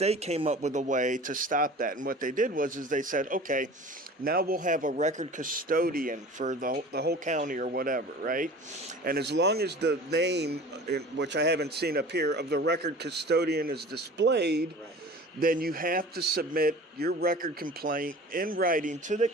came up with a way to stop that. And what they did was they said, okay, now we'll have a record custodian for the whole county or whatever, right? And as long as the name, which I haven't seen up here, of the record custodian is displayed, Right. then you have to submit your record complaint in writing to the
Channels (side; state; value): both; normal; correlation 0.41